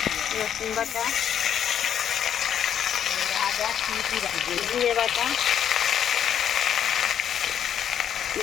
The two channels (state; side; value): quieter; right; 9.2 dB